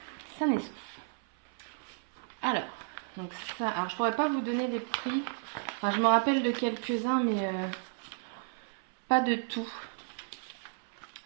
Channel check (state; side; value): silent; left; 56 dB below the other